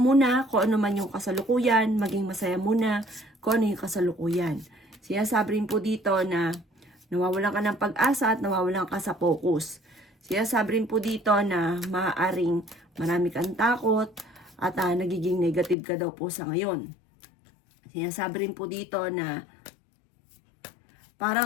kung ano man yung kasalukuyan, maging masaya muna kung ano yung kasalukuyan. Sinasabi rin po dito na nawawalan ka ng pag-asa at nawawalan ka sa focus. Sinasabi rin po dito na maaaring marami kang takot at nagiging negative ka daw po sa ngayon. Sinasabi rin po dito na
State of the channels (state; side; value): drops out; right; at 15.8 s